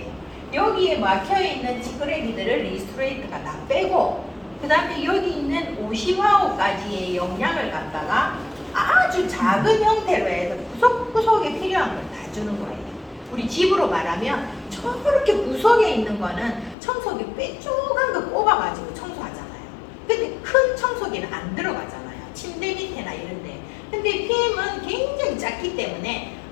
여기에 막혀있는 찌끄레기들을 리스토레이트가 다 빼고 그 다음에 여기 있는 오시화호까지의 영양을 갖다가 아주 작은 형태로 해서 구석구석에 필요한 걸 다 주는 거예요. 우리 집으로 말하면 저렇게 구석에 있는 거는 청소기 빼쪽한 거 꼽아가지고 청소하잖아요. 근데 큰 청소기는 안 들어가잖아요. 침대 밑에나 이런데. 근데 PM은 굉장히 작기 때문에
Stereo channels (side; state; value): right; drops out; at 16.8 s